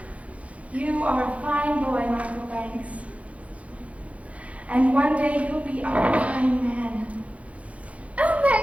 You are a fine boy, Michael Banks. And one day you'll be a fine man. Oh,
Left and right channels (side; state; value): left; late; 0.065 ms